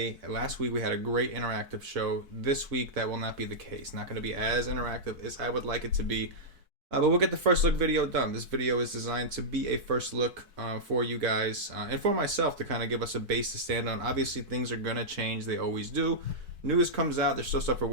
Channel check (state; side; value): late; left; 4.6 ms